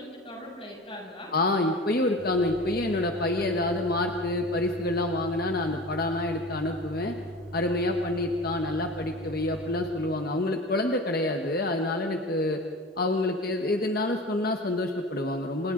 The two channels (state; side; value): normal; both; correlation 0.35